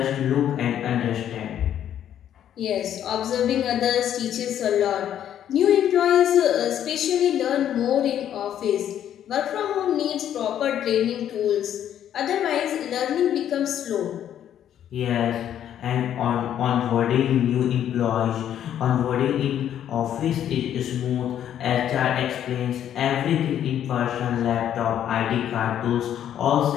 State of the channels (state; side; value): quieter; right; 10.3 dB